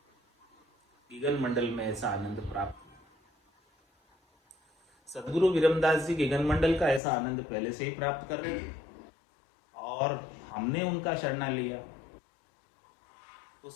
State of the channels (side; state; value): right; drops out; at 7.0 s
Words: गिगन मंडल में ऐसा आनंद प्राप्त हुआ। सदगुरु विरमदास जी गिगन मंडल का ऐसा आनंद पहले से ही प्राप्त कर रहे थे और हमने उनका शरणा लिया, तो